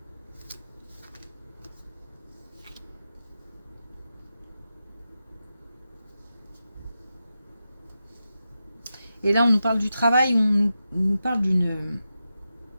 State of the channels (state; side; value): inverted; both; correlation -0.90